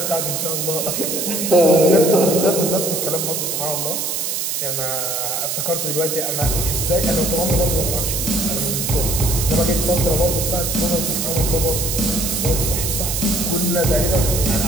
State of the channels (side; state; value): right; noise; hiss, 1 dB below the sound